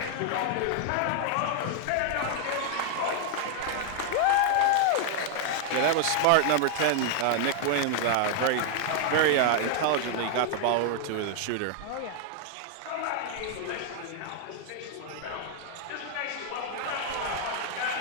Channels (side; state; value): both; different; correlation 0.00